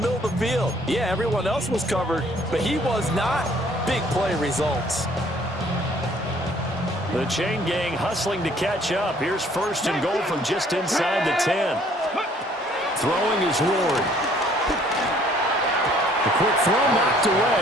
of the field. Yeah, everyone else was covered, but he was not. Big play results. The chain gang hustling to catch up. Here's 1st and goal from just inside the 10. Throwing is Ward. The quick throw knocked away.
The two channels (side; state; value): both; normal; correlation 0.60